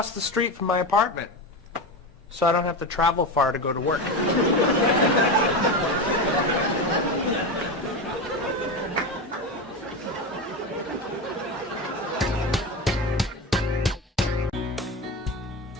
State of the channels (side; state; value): both; normal; correlation 0.20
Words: the street from my apartment, so I don't have to travel far to go to work.